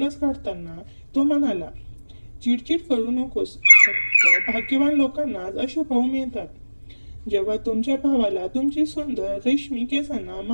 काढताना तो म्हणाला, चिडचिड करू नकोस, फक्त भाग्यवान लोकांनाच असे भाऊ मिळतात. जेव्हा तुमच्या भावाला तुमची सुंदर रेशमी केसांना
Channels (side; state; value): both; inverted; correlation -1.00